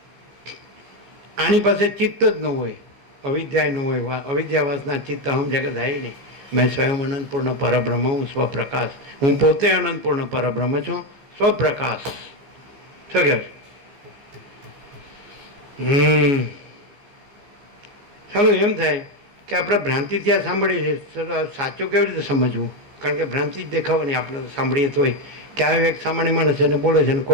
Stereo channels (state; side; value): late; left; 14 ms